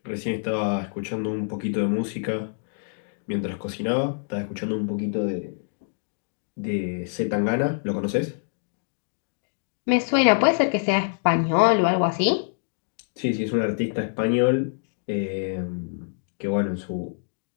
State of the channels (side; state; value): right; silent; digital silence